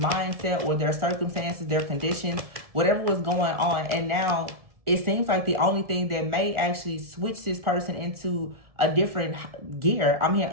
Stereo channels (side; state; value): left; late; 1.7 ms